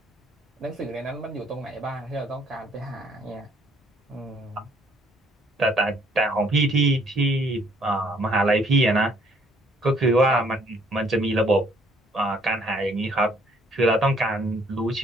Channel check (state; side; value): normal; both; correlation 0.64